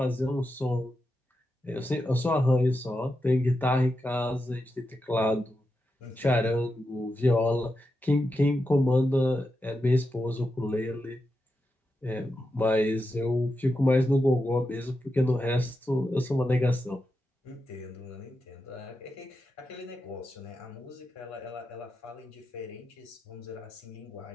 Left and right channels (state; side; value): normal; both; correlation 0.88